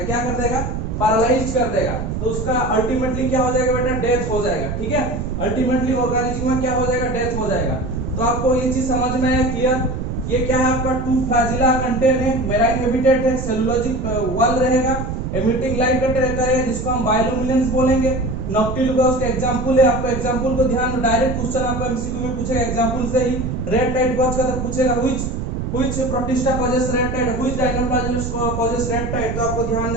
क्या कर देगा? पैरालाइज कर देगा। तो उसका अल्टीमेटली क्या हो जाएगा बेटा, डेथ हो जाएगा, ठीक है। अल्टीमेटली ऑर्गेनिज्म में क्या हो जाएगा, डेथ हो जाएगा। तो आपको ये चीज समझ में आया, क्लियर? ये क्या है आपका टू फ्लैजिला कंटेन है, मेराइन हैबिटेट है, सेलुलोजिक वॉल रहेगा, एमिटिंग लाइट करेगा, जिसको हम बायोल्यूमिनेंस बोलेंगे। नॉक्टिलुका उसका एग्जांपल है, आपको एग्जांपल को ध्यान में, डायरेक्ट क्वेश्चन आपको एमसीक्यू में पूछेगा एग्जांपल से ही। रेड टाइट कॉज का तो पूछेगा which protista causes red tide, which dinoflagellates causes red tide, तो आपको ध्यान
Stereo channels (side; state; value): right; noise; rumble, 4 dB below the sound